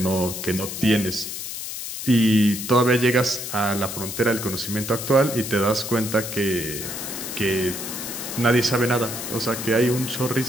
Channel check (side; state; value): left; noise; hiss, 7 dB below the sound